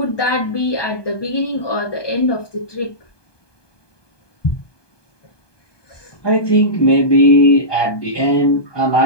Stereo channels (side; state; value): right; late; 1.2 ms